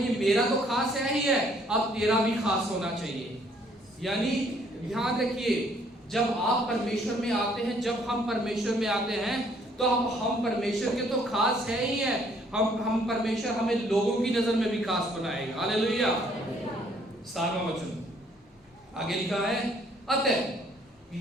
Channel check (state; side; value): normal; both; correlation 0.64